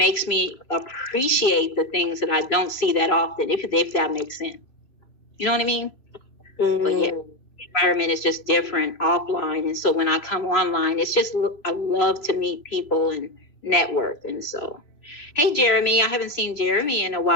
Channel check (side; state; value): right; late; 3.1 ms